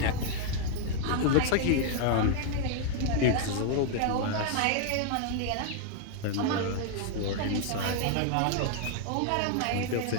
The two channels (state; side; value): different; both; correlation 0.00